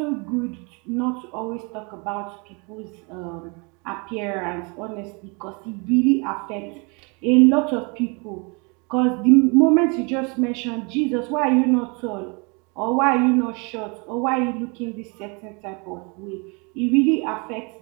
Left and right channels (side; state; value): left; quieter; 31.7 dB